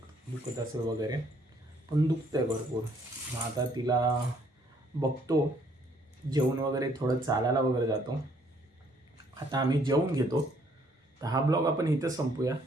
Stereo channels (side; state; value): both; normal; correlation 0.65